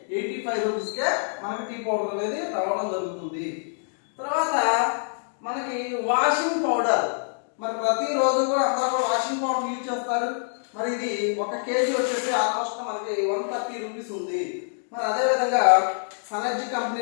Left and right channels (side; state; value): right; silent; digital silence